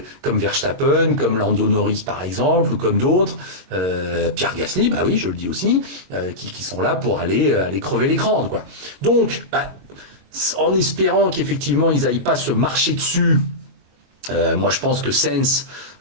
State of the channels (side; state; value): left; late; 22 ms